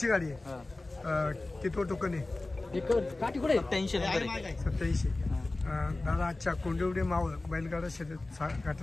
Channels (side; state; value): right; quieter; 3.0 dB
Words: गाडी आहे. किती टोकन आहे? 87. दादा आजच्या कोंडिवडे मावळ बैलगाडा शर्यत